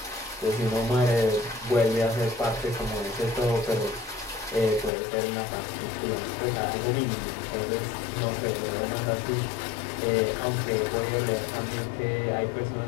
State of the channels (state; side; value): drops out; right; at 4.9 s